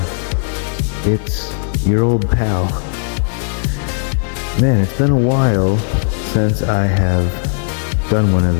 It's your old pal. Man, it's been a while since I have done one of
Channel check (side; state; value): right; silent; digital silence